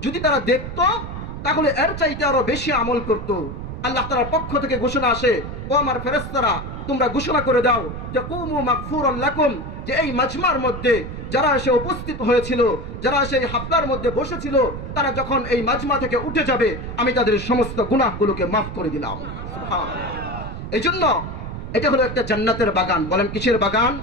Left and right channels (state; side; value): noise; right; rumble, 8 dB below the sound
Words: যদি তারা দেখতো তাহলে এর চাইতে আরো বেশি আমল করত। আল্লাহ তাআলার পক্ষ থেকে ঘোষণা আসে, ও আমার ফেরেশতারা, তোমরা ঘোষণা করে দাও যে কুমু মাগফুরান লাকুম, যে এই মাজমার মধ্যে যারা এসে উপস্থিত হয়েছিল, যারা এসে এই হাফলার মধ্যে বসেছিল, তারা যখন এই মাজমা থেকে উঠে যাবে, আমি তাদের সমস্ত গুনাহগুলোকে মাফ করে দিলাম। সুবহানাল্লাহ। এইজন্য এটা হলো একটা জান্নাতের বাগান। বলেন কিসের বাগান?